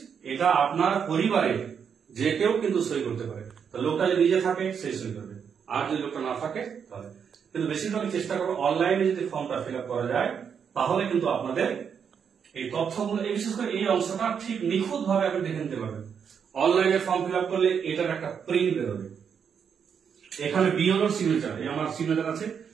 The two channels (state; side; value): quieter; left; 7.2 dB